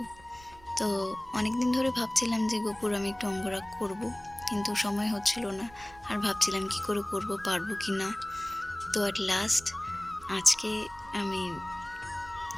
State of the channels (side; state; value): right; noise; rumble, 22 dB below the sound